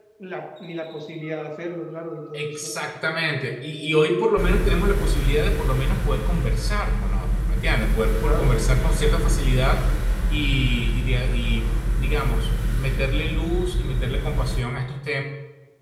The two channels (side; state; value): both; identical; correlation 1.00